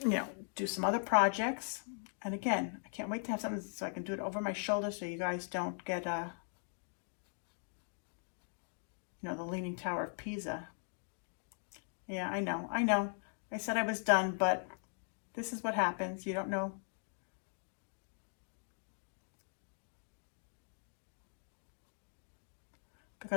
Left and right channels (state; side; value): silent; right; 51 dB below the other